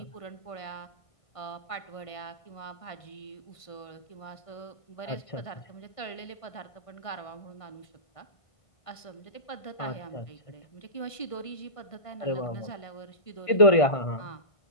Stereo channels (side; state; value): right; late; 1.5 ms